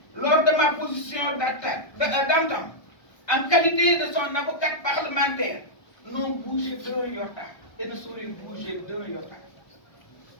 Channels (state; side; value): late; right; 1.2 ms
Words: lors de ma position d'antan, en qualité de son avocate parlementaire, n'ont bougé d'un iota et ne sauraient bouger d'un iota.